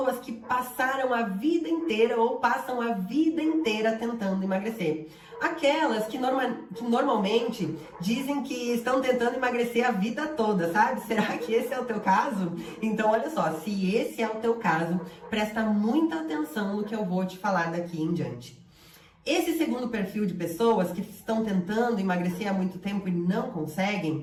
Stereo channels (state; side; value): identical; both; correlation 1.00